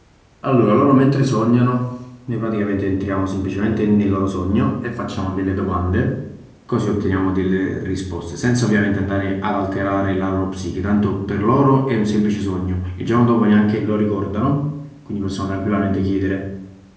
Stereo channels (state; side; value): identical; both; correlation 1.00